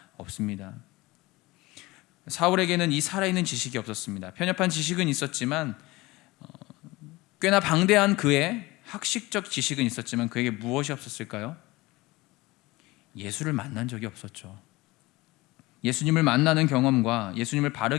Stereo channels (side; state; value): right; quieter; 21.0 dB